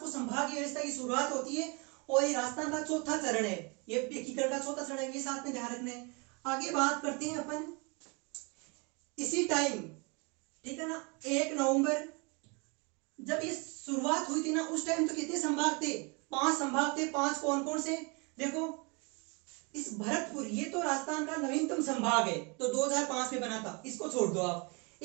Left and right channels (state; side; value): quieter; left; 31.3 dB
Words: संभागीय व्यवस्था की शुरुआत होती है, और ये राजस्थान का चौथा चरण है, ये एकीकरण का चौथा चरण है, ये साथ में ध्यान रखना है। आगे बात करते हैं अपन इसी टाइम, ठीक है ना, 1 नवंबर जब ये शुरुआत हुई थी ना, उस टाइम तो कितने संभाग थे? 5 संभाग थे। 5 कौन कौन से? देखो, इस भरतपुर, ये तो राजस्थान का नवीनतम संभाग है, तो 2005 में बना था, इसको छोड़ दो आप।